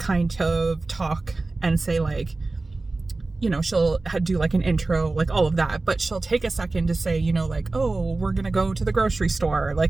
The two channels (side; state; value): left; quieter; 3.3 dB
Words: of talk and say like, you know, she'll do like an intro, like all of that, but she'll take a second to say, you know, like, oh, we're gonna go to the grocery store, like